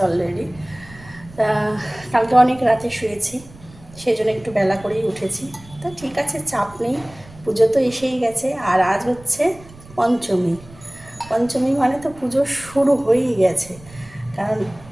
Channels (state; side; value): noise; right; rumble, 21 dB below the sound